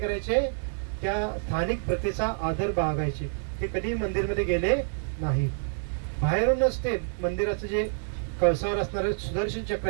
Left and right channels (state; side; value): silent; left; digital silence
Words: त्या स्थानिक प्रथेचा आदर बाळगायचे. ते कधी मंदिरमध्ये गेले नाही. बाहेरूनच ते मंदिराचं जे कळसावर असणारे सुदर्शन चक्र